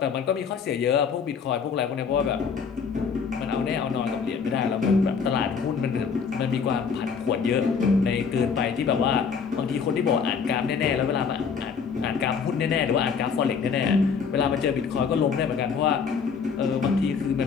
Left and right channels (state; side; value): quieter; right; 6.1 dB